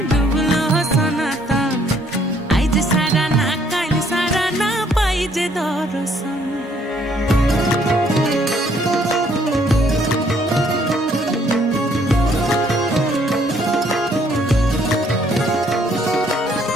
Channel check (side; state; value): both; normal; correlation 0.66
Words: डुबलो सनातन आइज सारा ना काल सारा ना पाइजे दर्शन